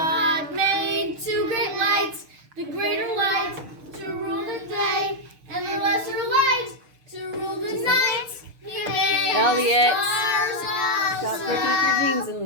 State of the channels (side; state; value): left; late; 6.6 ms